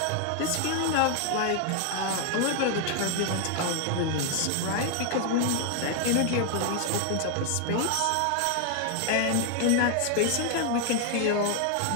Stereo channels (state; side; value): different; both; correlation 0.00